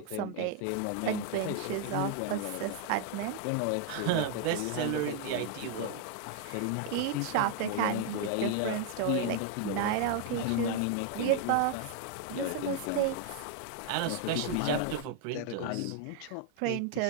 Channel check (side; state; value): both; different; correlation 0.00